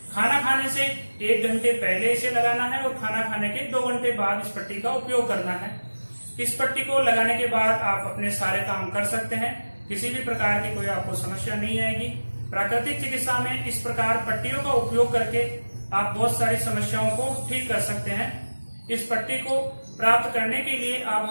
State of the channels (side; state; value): both; inverted; correlation -1.00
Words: खाना खाने से 1 घंटे पहले इसे लगाना है और खाना खाने के 2 घंटे बाद इस पट्टी का उपयोग करना है। इस पट्टी को लगाने के बाद आप अपने सारे काम कर सकते हैं, किसी भी प्रकार की कोई आपको समस्या नहीं आएगी। प्राकृतिक चिकित्सा में इस प्रकार पट्टियों का उपयोग करके आप बहुत सारी समस्याओं को ठीक कर सकते हैं। इस पट्टी को प्राप्त करने के लिए आप